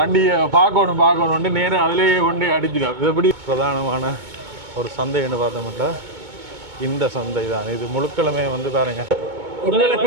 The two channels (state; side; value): late; left; 2.2 ms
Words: பார்க்கணும் நேரம் அதிலேயே கொண்டு அடிச்சிடும். இது எப்படி பிரதானமான ஒரு சந்தைன்னு பார்த்தோம்னா இந்த சந்தை தான். இது முழுக்களுமே வந்து பாருங்க.